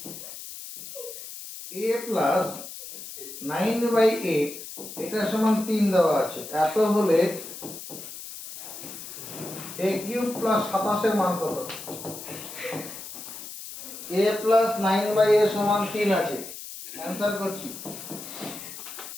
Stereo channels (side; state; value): left; noise; hiss, 11 dB below the sound